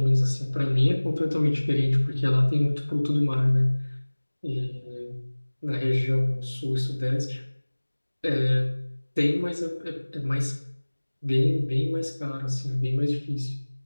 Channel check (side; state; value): both; inverted; correlation -1.00